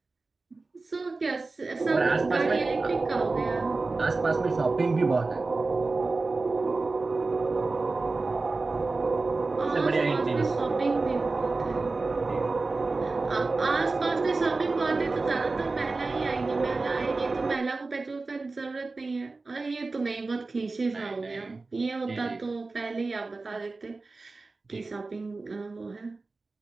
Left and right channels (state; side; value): quieter; left; 3.6 dB